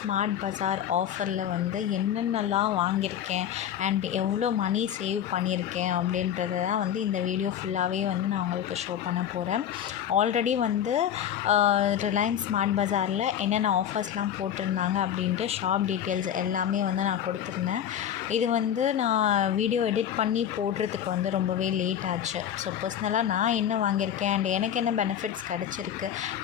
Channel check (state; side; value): quieter; right; 9.8 dB